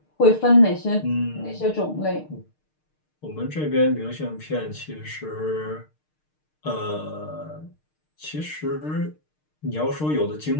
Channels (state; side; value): late; right; 6.5 ms